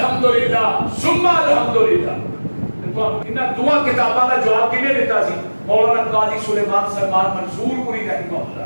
ثم الحمدللہ انہاں دعا کتاباں دا جواب کنے دیتا سی مولانا قاضی سلیمان سلمان منصور پوری رحمہ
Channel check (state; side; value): inverted; both; correlation -1.00